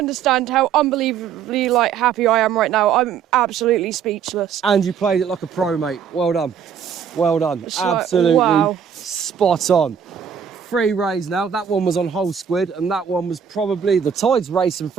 how unbelievably happy I am right now. I'm absolutely speechless. And you played it like a pro, mate. Well done. Well done. It's like, Absolutely wow. spot on. 3 rays now. That one was on whole squid, and that one was probably, the tide's racing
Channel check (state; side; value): quieter; left; 7.7 dB